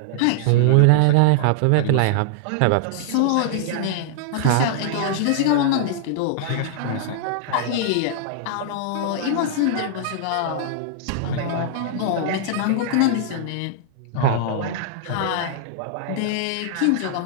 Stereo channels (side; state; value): both; different; correlation -0.01